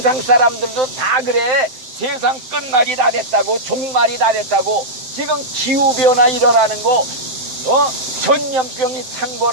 사람들도 다 그래. 세상 끝날이 다 됐다고, 종말이 다 됐다고. 지금 기후변화 일어나는 거, 전염병이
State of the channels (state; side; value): late; left; 7.6 ms